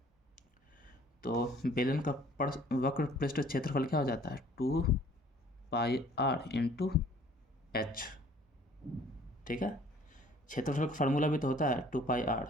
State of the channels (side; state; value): both; normal; correlation 0.55